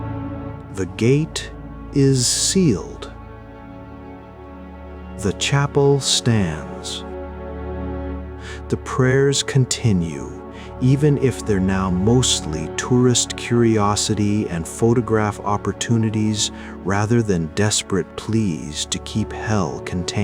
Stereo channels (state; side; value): identical; both; correlation 1.00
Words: The gate is sealed. The chapel stands. The prayers continue, even if they're now mostly tourist curiosity and photograph opportunities rather than desperate pleas to keep hell